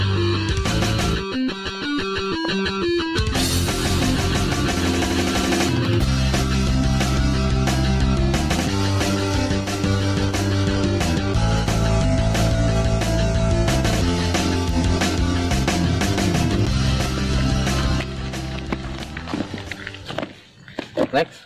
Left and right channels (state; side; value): identical; both; correlation 1.00